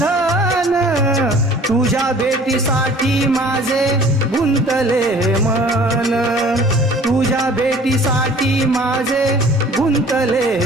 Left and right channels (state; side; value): normal; both; correlation 0.50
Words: तुझ्या भेटीसाठी माझे गुंतले मन, तुझ्या भेटीसाठी माझे